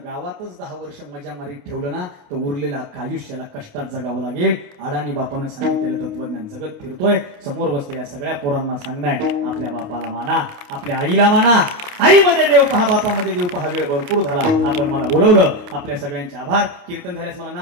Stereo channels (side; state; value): left; late; 28 ms